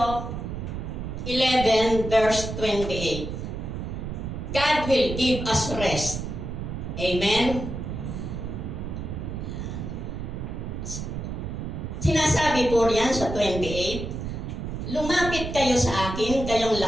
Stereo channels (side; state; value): right; noise; rumble, 5 dB below the sound